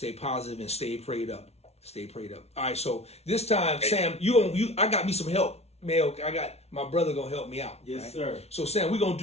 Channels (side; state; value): right; late; 0.31 ms